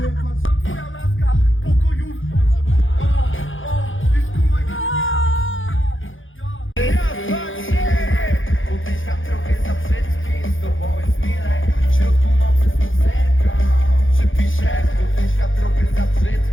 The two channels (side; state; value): right; late; 0.58 ms